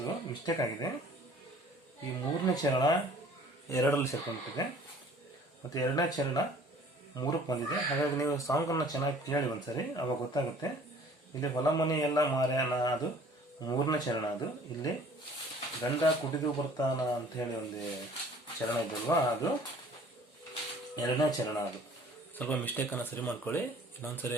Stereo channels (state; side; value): normal; both; correlation 0.52